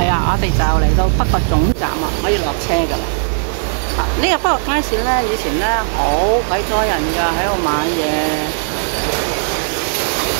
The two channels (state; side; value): silent; left; digital silence